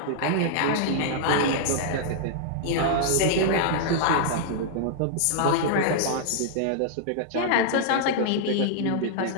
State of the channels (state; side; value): different; both; correlation -0.01